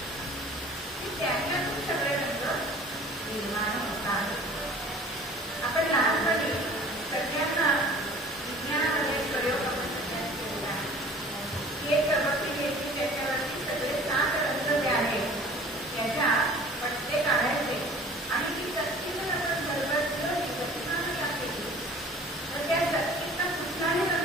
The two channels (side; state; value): both; normal; correlation 0.47